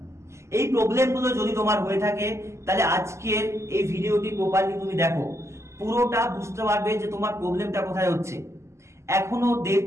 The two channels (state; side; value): late; left; 0.13 ms